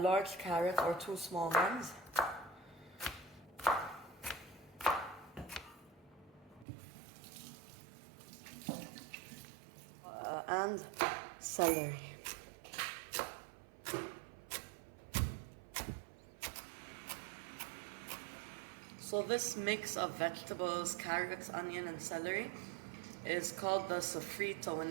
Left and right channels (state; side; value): drops out; left; at 6.7 s